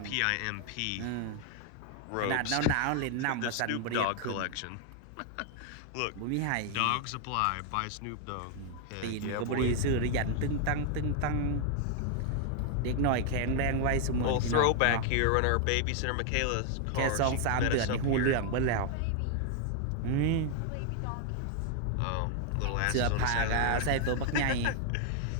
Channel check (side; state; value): both; different; correlation 0.00